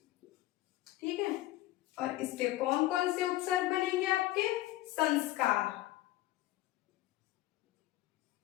ठीक है, और इसके कौन कौन से उपसर्ग बनेंगे आपके, संस्कार,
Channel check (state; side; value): quieter; right; 16.4 dB